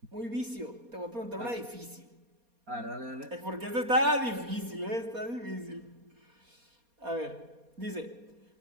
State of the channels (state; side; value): late; left; 4.2 ms